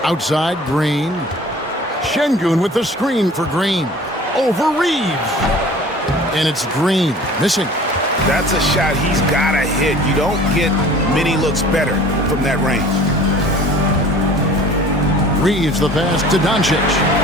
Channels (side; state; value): both; normal; correlation 0.46